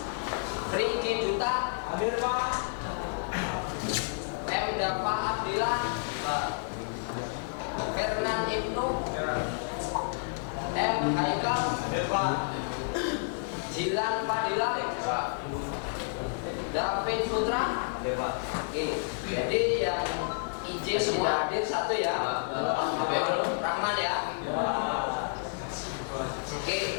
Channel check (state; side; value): silent; right; digital silence